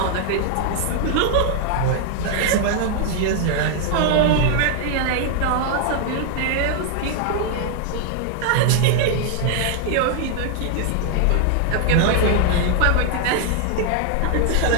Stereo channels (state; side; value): different; both; correlation 0.00